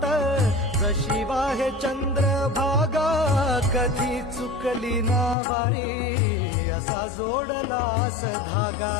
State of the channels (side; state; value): right; drops out; at 5.4 s